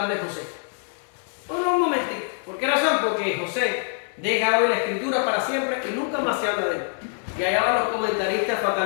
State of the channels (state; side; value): silent; right; 59 dB below the other